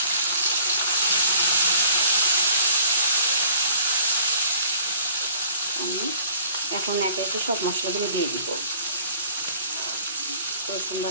আমি এখন একে একে সব মশলাগুলো দিয়ে দিব। রসুন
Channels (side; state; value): both; inverted; correlation -0.53